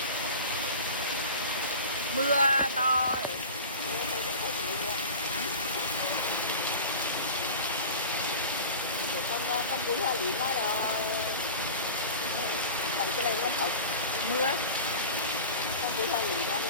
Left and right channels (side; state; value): both; inverted; correlation -0.34